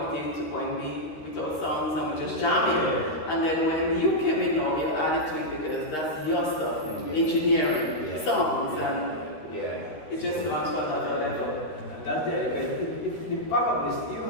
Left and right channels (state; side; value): late; right; 13 ms